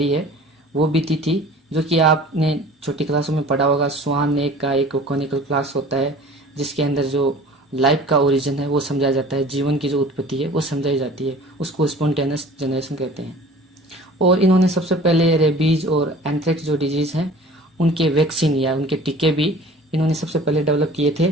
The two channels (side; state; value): both; normal; correlation 0.45